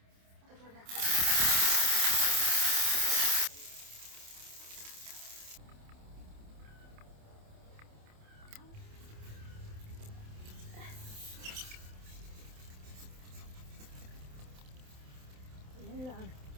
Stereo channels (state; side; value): late; left; 27 ms